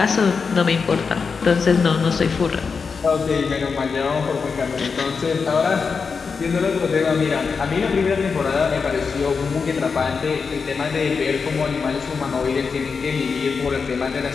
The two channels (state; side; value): quieter; right; 5.3 dB